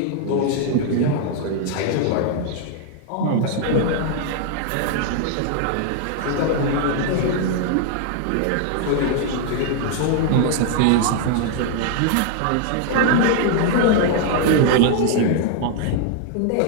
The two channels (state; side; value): different; both; correlation 0.00